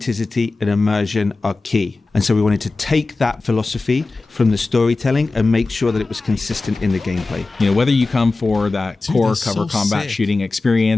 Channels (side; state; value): right; quieter; 3.6 dB